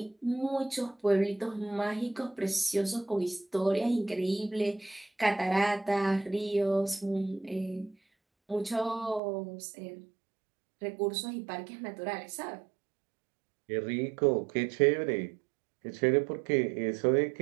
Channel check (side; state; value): left; drops out; at 9.2 s